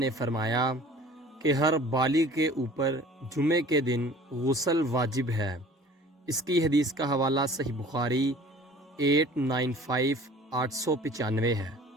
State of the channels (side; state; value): both; normal; correlation 0.47